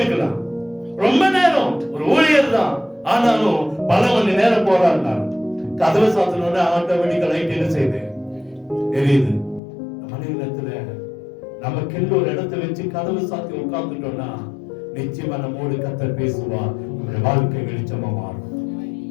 ரொம்ப நேரம் ஒரு ஊழியர் தான், ஆனாலும் பல மணி நேரம் போராடினார். கதவை சாத்தினோட ஆட்டோமேட்டிக்கா லைட் என்ன செய்யுது, எரியுது. மனிதத்துல நமக்கு ஒரு இடத்தை வச்சு கதவை சாத்தி உட்கார்ந்துட்டோம்னா நிச்சயமா நம்மோடு கர்த்தர் பேசுவா. நம்முடைய வாழ்க்கை வெளிச்சமா மாறும்.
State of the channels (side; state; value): right; drops out; at 9.6 s